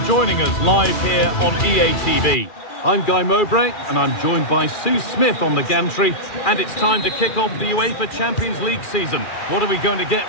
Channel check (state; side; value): late; right; 2.4 ms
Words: us live here on EA TV. I'm Guy Mowbray and I'm joined by Sue Smith on the gantry. And it's time to kick off the UEFA Champions League season. What are we going to get